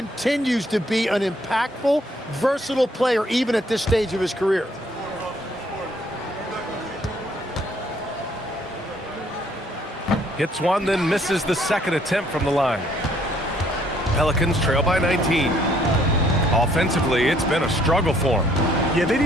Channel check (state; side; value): normal; both; correlation 0.65